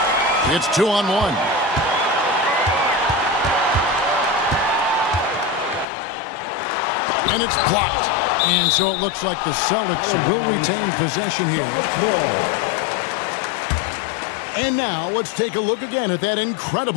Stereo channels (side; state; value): right; drops out; at 5.9 s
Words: It's 2-on-1. And it's blocked. And so it looks like the Celtics will retain possession here. And now let's take a look again at that